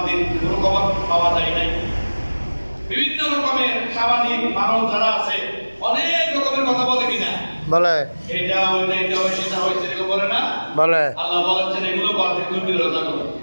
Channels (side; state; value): both; inverted; correlation -1.00